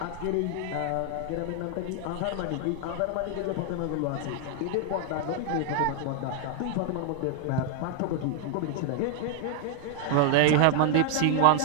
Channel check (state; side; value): different; both; correlation 0.00